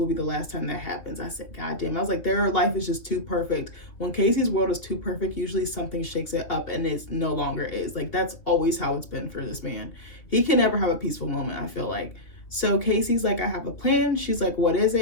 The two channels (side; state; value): right; late; 2.6 ms